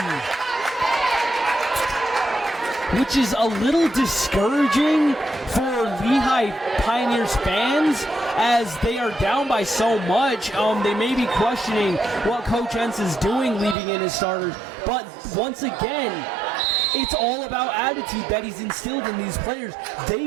which is a little discouraging for Lehi Pioneers fans, as they are down by so much. They may be questioning what Coach Entz is doing leaving in his starters, but once again, it's all about attitude that he's instilled in these players.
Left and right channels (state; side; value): drops out; left; at 13.8 s